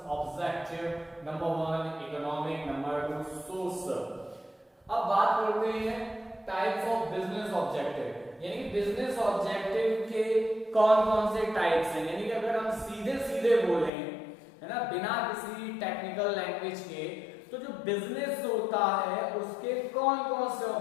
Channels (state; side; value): drops out; right; at 13.9 s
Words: objective. Number 1 economic, number 2 social. अब बात करते हैं टाइप्स ऑफ बिजनेस ऑब्जेक्टिव, यानी कि बिजनेस ऑब्जेक्टिव के कौन कौन से टाइप्स हैं। यानी कि अगर हम सीधे सीधे बोलें, है ना, बिना किसी टेक्निकल लैंग्वेज के, तो जो बिजनेस होता है उसके कौन कौन से